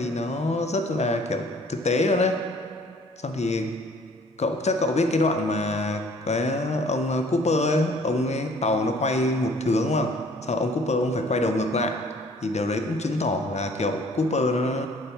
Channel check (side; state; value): both; normal; correlation 0.55